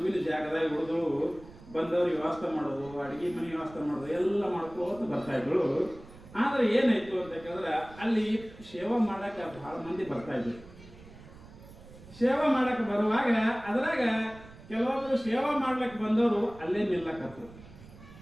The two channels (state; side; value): noise; right; rumble, 19 dB below the sound